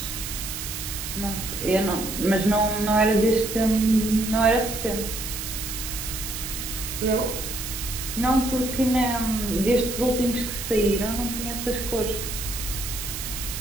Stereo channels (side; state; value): right; noise; hiss, 6 dB below the sound